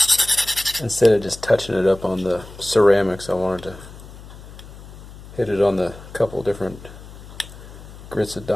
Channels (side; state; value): left; noise; hum, 17 dB below the sound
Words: Instead of just touching it up on the ceramics, I wanted to hit it on the couple different grits of